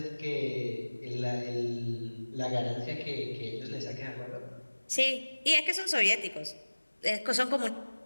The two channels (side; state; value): both; inverted; correlation -1.00